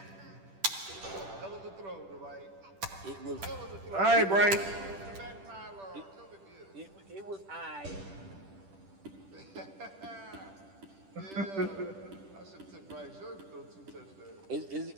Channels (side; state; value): left; late; 10 ms